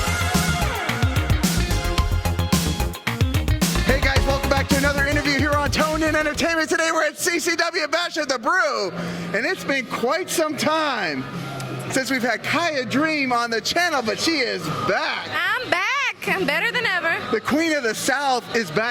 Hey guys, welcome back to another interview here on Tone In Entertainment. Today we're at CCW Bash at the Brew, and it's been quite some time since we've had Kiah Dream on the channel, but she is back. I'm back. I'm better than ever. The Queen of the South is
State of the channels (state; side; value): identical; both; correlation 1.00